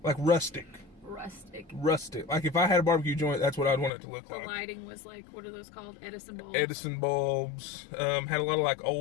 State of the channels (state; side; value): drops out; right; at 3.9 s